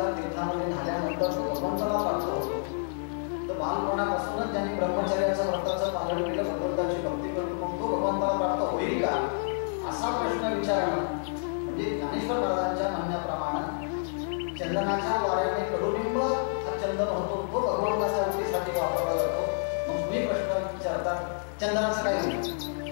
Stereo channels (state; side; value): silent; right; 59 dB below the other